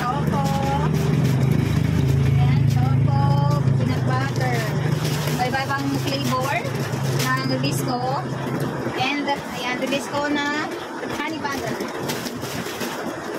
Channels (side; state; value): both; identical; correlation 1.00